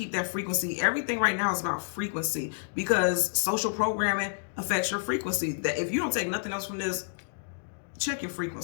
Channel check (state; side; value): silent; right; digital silence